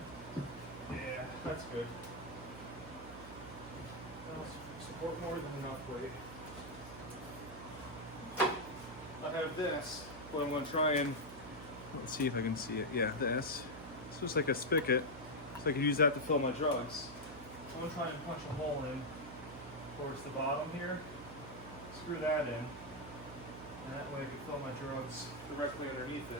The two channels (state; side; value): noise; right; hum, 13 dB below the sound